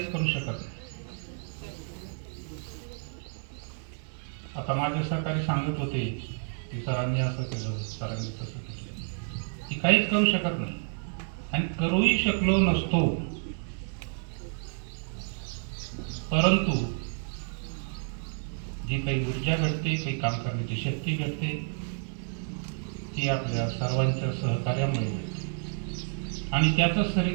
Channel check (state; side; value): silent; left; 58 dB below the other